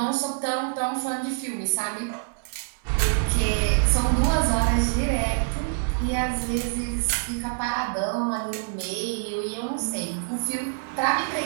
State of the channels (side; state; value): left; silent; 61 dB below the other